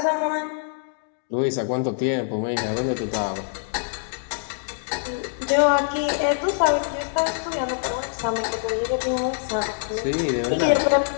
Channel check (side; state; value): right; silent; digital silence